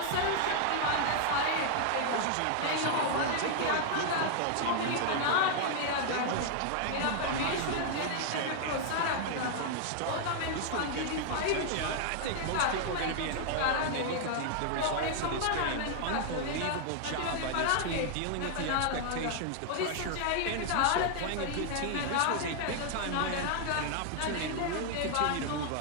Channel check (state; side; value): different; both; correlation 0.00